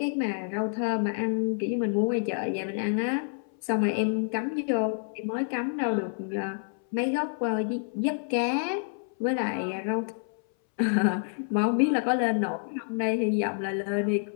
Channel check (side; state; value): right; silent; 59 dB below the other